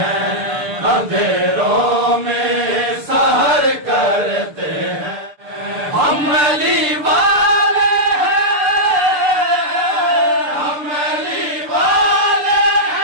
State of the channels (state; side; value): late; left; 6.8 ms